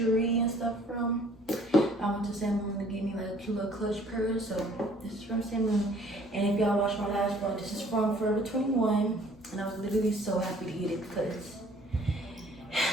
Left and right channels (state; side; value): normal; both; correlation 0.57